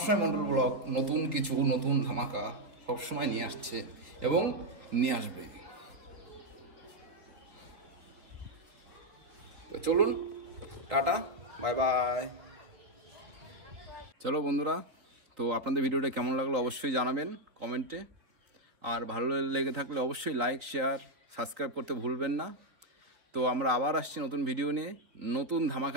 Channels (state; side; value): late; left; 3.8 ms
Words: মন্ডল ব্লগ নতুন কিছু, নতুন ধামাকা সবসময় নিয়ে আসছে এবং নিয়ে আসবে। তো চলুন, টাটা, বাই বাই। চলো বন্ধুরা, তো আপনাদের ভিডিওটা কেমন লাগলো অবশ্যই জানাবেন কমেন্টে, আর ভালো লেগে থাকলে অবশ্যই লাইক, শেয়ার, সাবস্ক্রাইব করতে ভুলবেন না। তো আমরা আবার আসছি নতুন ভিডিও নিয়ে, নতুন